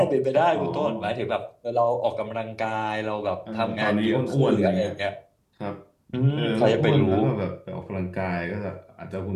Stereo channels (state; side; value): identical; both; correlation 1.00